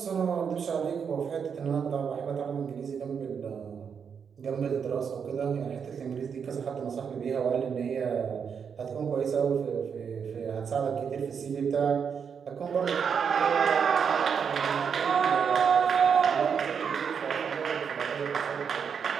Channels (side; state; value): left; quieter; 6.8 dB